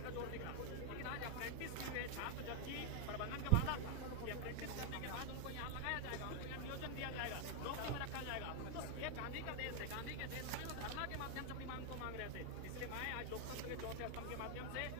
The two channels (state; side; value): different; both; correlation 0.00